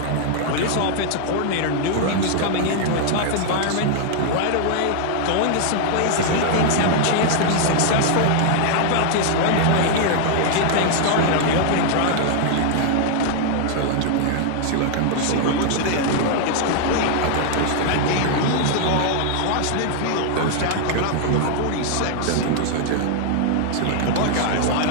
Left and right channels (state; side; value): different; both; correlation 0.00